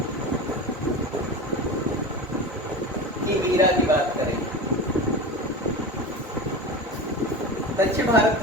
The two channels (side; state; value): both; normal; correlation 0.28